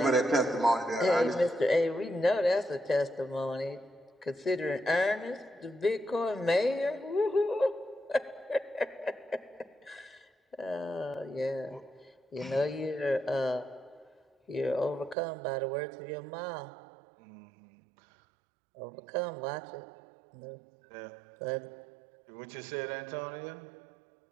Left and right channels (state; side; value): drops out; left; at 15.2 s